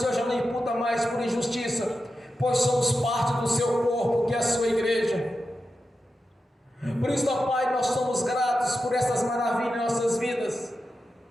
já não imputa mais por injustiça, pois somos parte do Seu corpo, que é a Sua igreja. Por isso, ó Pai, nós somos gratos por essas maravilhas em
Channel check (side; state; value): both; normal; correlation 0.91